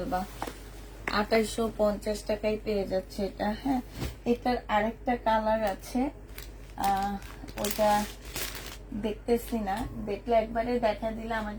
2850 টাকায় পেয়ে যাচ্ছে এটা। হ্যাঁ, এটার আরেকটা কালার আছে, ওটা দেখতেছি না, দেখলে একবারে দেখা দিলে আমার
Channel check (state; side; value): identical; both; correlation 1.00